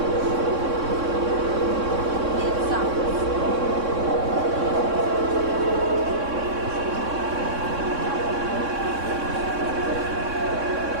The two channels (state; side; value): late; left; 3.6 ms